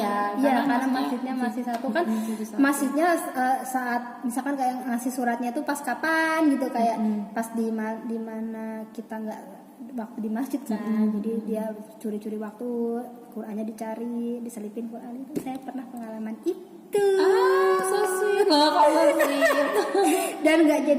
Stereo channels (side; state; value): both; identical; correlation 1.00